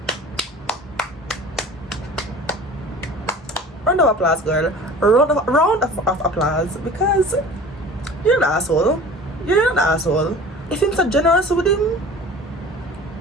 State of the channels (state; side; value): normal; both; correlation 0.41